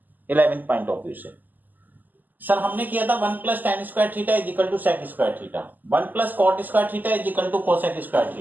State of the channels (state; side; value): late; left; 0.085 ms